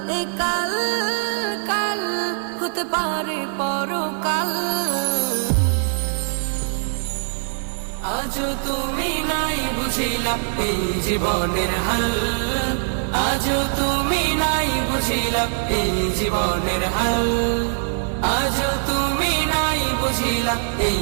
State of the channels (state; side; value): silent; left; digital silence